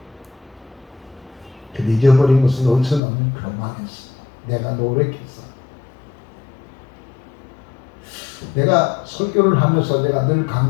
근데 잊어버린 것은 어디서 나오면 교만했어. 내가 노력했어. 내가 설교를 하면서 내가 늘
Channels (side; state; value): right; drops out; at 3.0 s